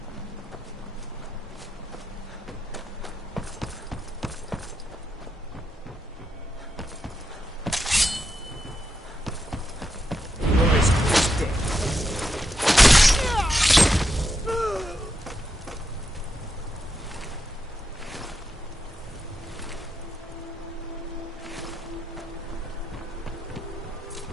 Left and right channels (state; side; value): normal; both; correlation 0.84